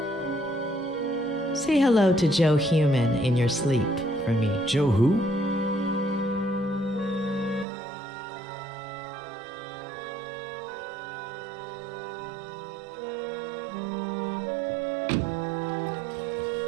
Say hello to Joe Human in your sleep for me. Joe who?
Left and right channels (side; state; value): left; drops out; at 7.7 s